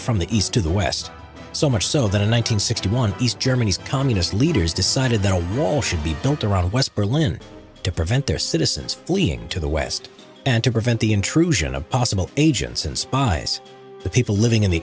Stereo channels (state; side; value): identical; both; correlation 1.00